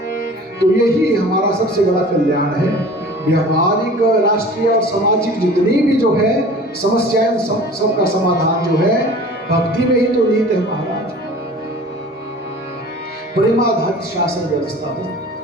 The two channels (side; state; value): both; normal; correlation 0.43